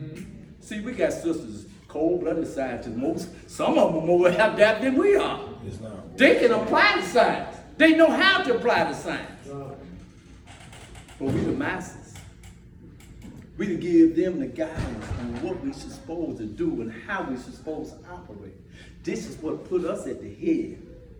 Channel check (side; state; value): both; identical; correlation 1.00